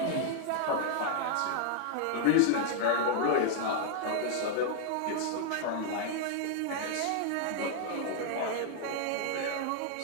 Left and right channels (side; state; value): both; different; correlation -0.01